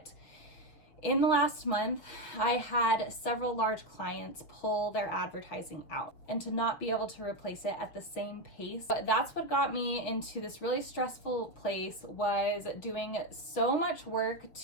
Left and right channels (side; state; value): right; late; 6.6 ms